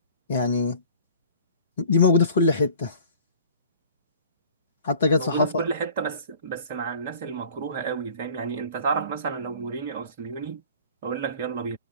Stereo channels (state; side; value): inverted; both; correlation -0.47